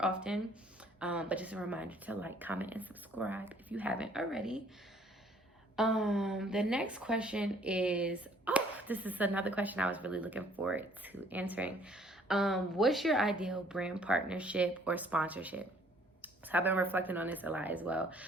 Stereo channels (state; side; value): normal; both; correlation 0.59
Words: often. But just a reminder to like, comment, and subscribe if you haven't already. The next question is, this is another question I was really looking forward to answering. What's your ideal brand partnership or sponsorship? So I've been reflecting on this a lot as well.